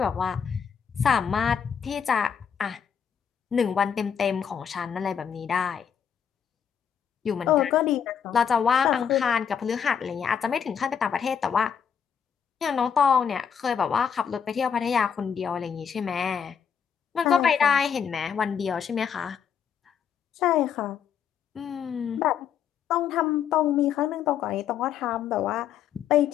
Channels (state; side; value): quieter; right; 7.6 dB